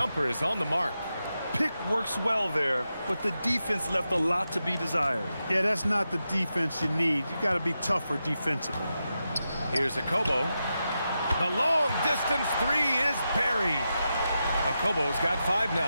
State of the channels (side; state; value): both; inverted; correlation -0.88